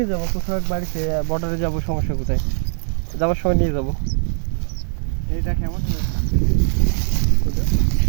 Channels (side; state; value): left; silent; digital silence